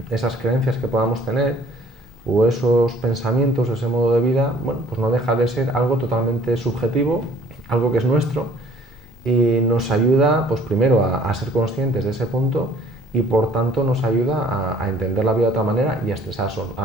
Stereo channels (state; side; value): normal; both; correlation 0.55